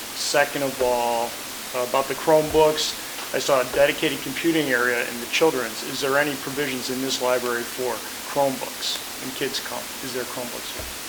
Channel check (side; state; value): both; identical; correlation 1.00